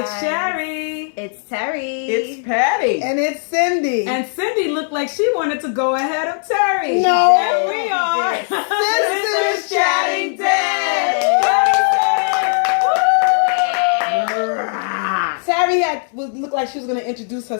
It's Sherry. It's Terry. It's Patty. And it's Cindy. And Cindy looked like she wanted to go ahead of Terry. No. And we are Sisters Chatting Dead. Terry looked like she was going to introduce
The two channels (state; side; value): silent; right; 67 dB below the other